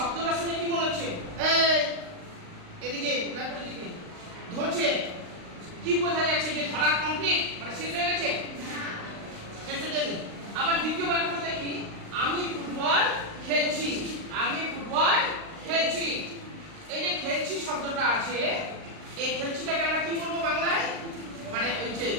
শুনে কি মনে হচ্ছে এদিকে ব্ল্যাকবোর্ডের দিকে ধরছে কি বোঝা যাচ্ছে যে ধরা কমপ্লিট মানে শেষ হয়ে গেছে শেষ হয়ে যায়নি আবার দ্বিতীয়বার করে দেখি আমি ফুটবল খেলছি আমি ফুটবল খেলছি এই যে খেলছি শব্দটা আছে এই খেলছিটাকে আমরা কি বলবো বাংলায় মানে ওই যে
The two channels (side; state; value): left; late; 39 ms